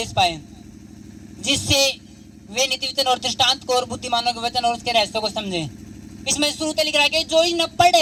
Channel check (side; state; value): both; identical; correlation 1.00